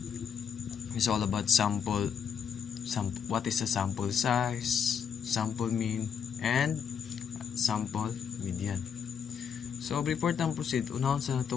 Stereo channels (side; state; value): right; quieter; 7.4 dB